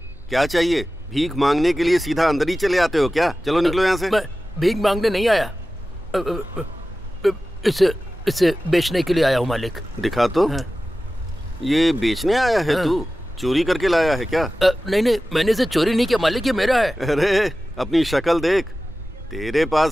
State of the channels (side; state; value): right; noise; hum, 23 dB below the sound